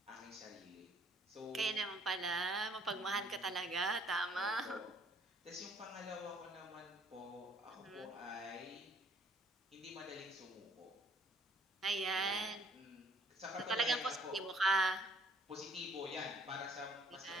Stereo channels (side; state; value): both; normal; correlation 0.61